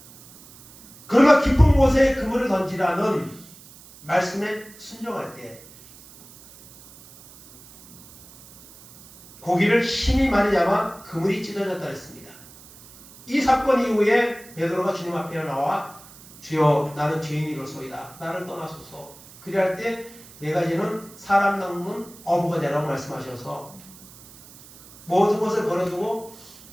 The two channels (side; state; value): right; noise; hiss, 21 dB below the sound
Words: 그러나 깊은 곳에 그물을 던지라는 말씀에 순종할 때 고기를 힘이 많이 잡아 그물이 찢어졌다 했습니다. 이 사건 이후에 베드로가 주님 앞에 나와 주여 나는 죄인이로소이다. 나를 떠나소서. 그리할 때 내가 이제는 사람 낚는 어부가 되라고 말씀하셔서 모든 것을 버려두고